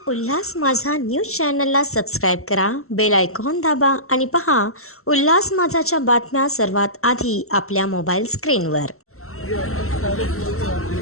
उल्हास माझा न्यूज चॅनलला सबस्क्राईब करा, बेल आयकॉन दाबा आणि पहा उल्हास माझाच्या बातम्या सर्वात आधी आपल्या मोबाईल स्क्रीनवर.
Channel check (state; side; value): late; right; 0.63 ms